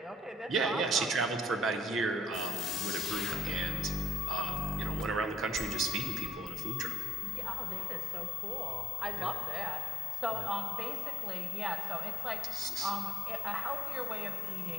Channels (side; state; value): both; normal; correlation 0.58